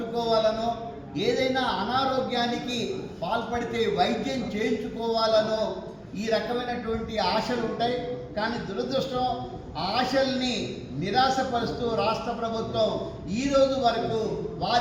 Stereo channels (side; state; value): both; identical; correlation 1.00